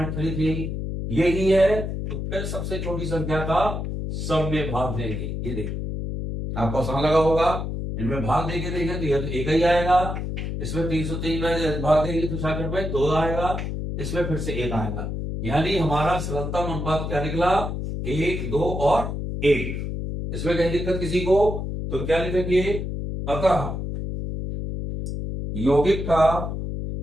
यही है। तो फिर सबसे छोटी संख्या का सब में भाग देंगे। ये देखिए आपको आसान लगा होगा, इनमें भाग देके देंगे तो यह तो एक ही आएगा। इसमें 303 में भाग देंगे तो 66 में 2 आएगा, इसमें फिर से 1 आएगा। यानी हमारा सरलतम अनुपात क्या निकला, 1, 2 और 1। इसमें कहीं दिक्कत किसी को तो क्या लिखेंगे, अतः यौगिक का,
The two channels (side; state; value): left; noise; hum, 4 dB below the sound